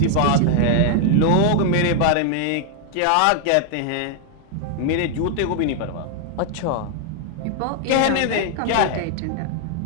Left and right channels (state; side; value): different; both; correlation 0.00